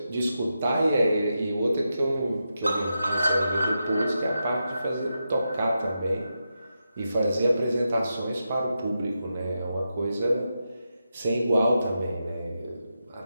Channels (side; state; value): both; inverted; correlation -0.88